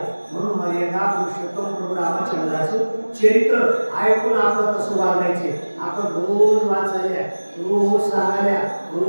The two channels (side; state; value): both; inverted; correlation -1.00